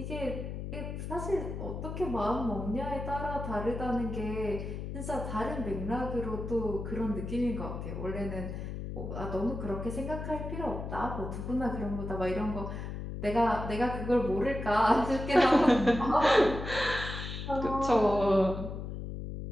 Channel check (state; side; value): noise; left; hum, 6 dB below the sound